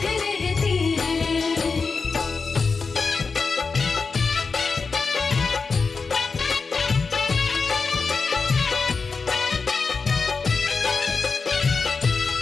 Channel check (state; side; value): quieter; right; 4.7 dB